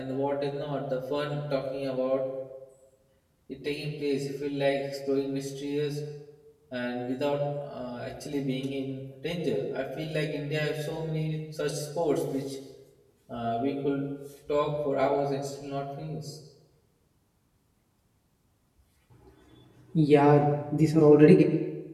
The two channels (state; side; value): identical; both; correlation 1.00